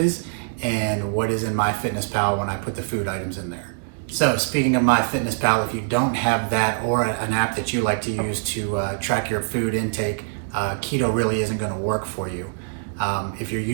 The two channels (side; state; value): left; silent; digital silence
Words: and what is in MyFitnessPal when I put the food items in there. So speaking of MyFitnessPal, if you don't have that or an app that you like to use to track your food intake, keto really isn't going to work for you. If you're